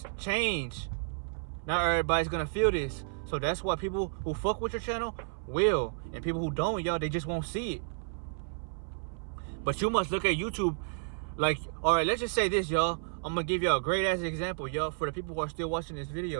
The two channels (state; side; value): silent; left; 57 dB below the other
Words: change. Not everybody's going to feel this. So that's why people who fuck with your channel will. And people who don't, y'all, they just won't see it. But you must look at YouTube like, all right, let's just say this, y'all. I'm going to give y'all a great ass example, y'all, for the people who are still watching this